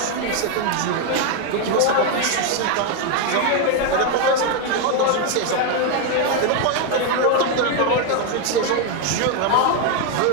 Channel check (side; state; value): both; different; correlation 0.01